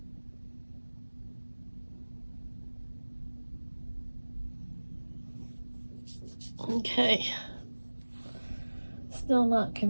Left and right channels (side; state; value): both; inverted; correlation -1.00